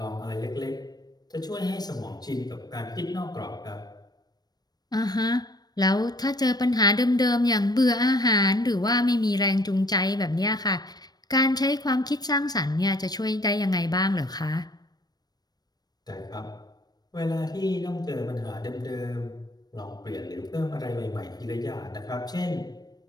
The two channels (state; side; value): late; right; 0.19 ms